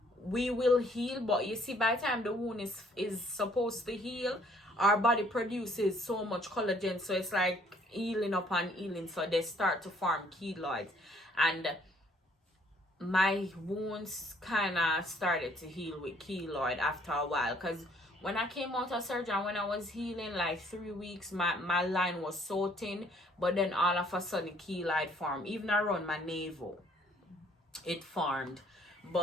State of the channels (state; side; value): normal; both; correlation 0.62